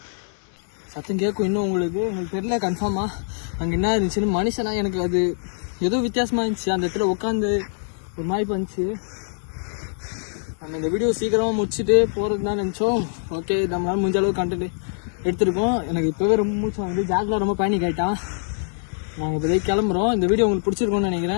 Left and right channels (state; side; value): silent; right; 63 dB below the other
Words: சத்தம் கேட்கும் இன்னும் உங்களுக்கு தெரியல கன்ஃபார்மா அங்கே என்ன இருந்துச்சுன்னு. மனுஷனா எனக்கு அது ஏதோ வித்தியாசமா இருந்துச்சு. அந்த இடத்துல உட்காந்து ஒரு மாதிரி பண்ணிச்சு. நம்ம இந்த வீடியோ சீக்கிரமாக முடிச்சுட்டு போகிறது தான் நினச்சோம். ஓகே, நம்மளால முடிஞ்ச அளவுக்கு கண்டென்ட் எடுத்துருக்கோம். எனக்கு இப்போவே ரொம்ப மூச்சு வந்து ஜாக்லாம் ரொம்ப பேனிக் ஆகிட்டான். நாங்கள் இப்போதைக்கு கிளம்புறோம். இந்த வீடியோ உங்களுக்கு பிடிச்சிருக்கோன்னு